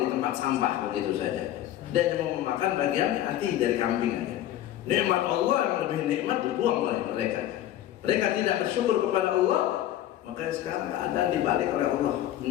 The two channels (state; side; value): quieter; right; 12.7 dB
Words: di tempat sampah begitu saja. Dan yang mau memakan bagian hati dari kambing aja. Nikmat Allah yang lebih nikmat dibuang oleh mereka. Mereka tidak bersyukur kepada Allah. Maka sekarang keadaan dibalik oleh Allah